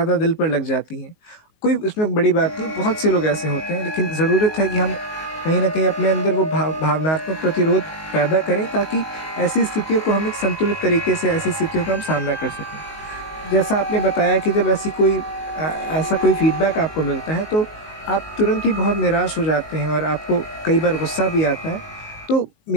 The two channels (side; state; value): right; late; 19 ms